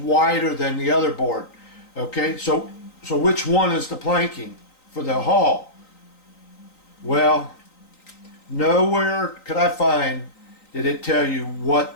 than the other board. Okay, so which one is the planking for the hull? Well, nowhere could I find did it tell you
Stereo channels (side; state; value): right; late; 3.9 ms